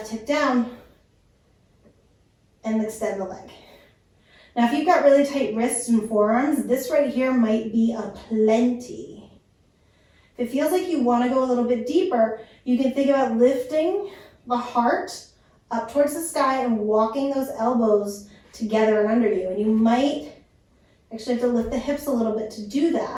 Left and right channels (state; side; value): identical; both; correlation 1.00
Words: hip down, and extend the leg. Now, if you've got really tight wrists and forearms, this right here might be a plenty. If it feels like you want to go a little bit deeper, you can think about lifting the heart up towards the sky and walking those elbows together and under you. And you might actually have to lift the hips a little bit to do